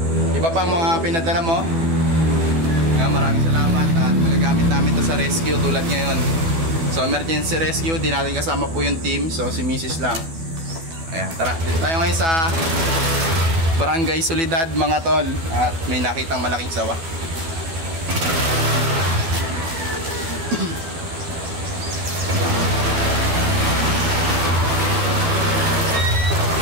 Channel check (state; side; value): late; left; 12 ms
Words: iba pang mga pinadala mo. Maraming salamat at magagamit namin to sa rescue tulad ngayon. So emergency rescue, di natin kasama po yung team, so si Mrs. lang. Ayan, tara, dito tayo ngayon sa Barangay Solidad mga tol, at may nakitang malaking sawa.